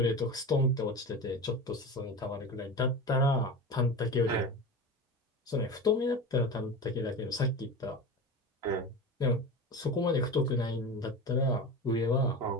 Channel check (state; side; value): normal; both; correlation 0.28